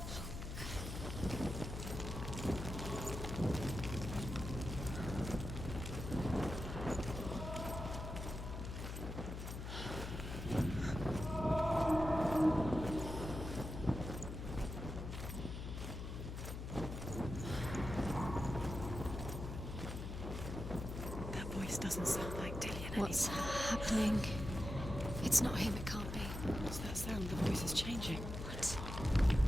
That voice doesn't sound like Dillian What's anymore. happening? It's not him, it can't be. What's that sound? The voice is changing. What?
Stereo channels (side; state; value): left; noise; hum, 6 dB below the sound